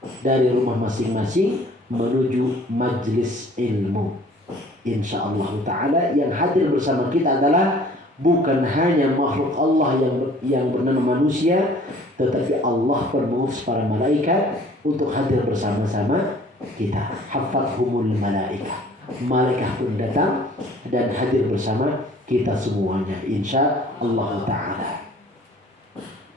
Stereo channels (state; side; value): normal; both; correlation 0.53